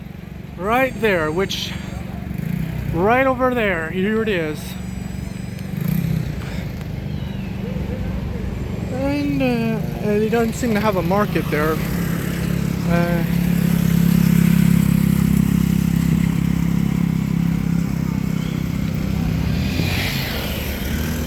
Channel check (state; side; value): identical; both; correlation 1.00